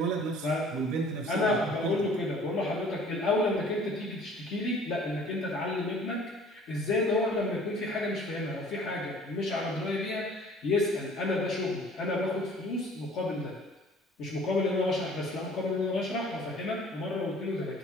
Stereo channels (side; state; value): both; normal; correlation 0.51